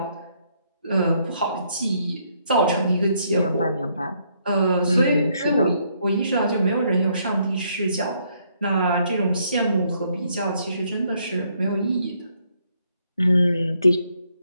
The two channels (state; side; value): inverted; both; correlation -0.71